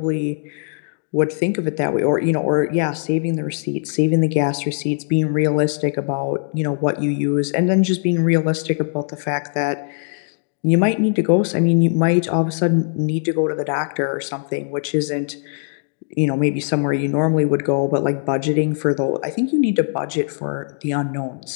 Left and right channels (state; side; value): silent; right; digital silence